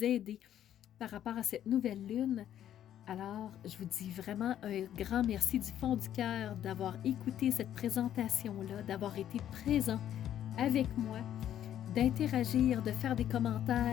aider par rapport à cette nouvelle lune. Alors, je vous dis vraiment un grand merci du fond du cœur d'avoir écouté cette présentation-là, d'avoir été présent avec moi, d'interagir, de faire des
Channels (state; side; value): quieter; right; 10.9 dB